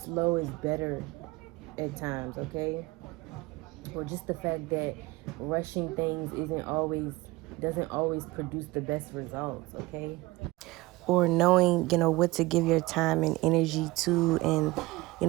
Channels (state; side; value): quieter; left; 21.4 dB